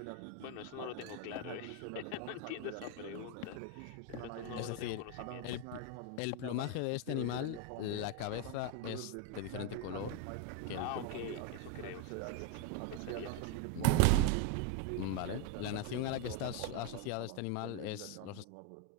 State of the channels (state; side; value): different; both; correlation 0.01